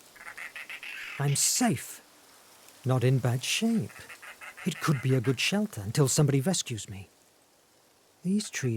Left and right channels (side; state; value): both; identical; correlation 1.00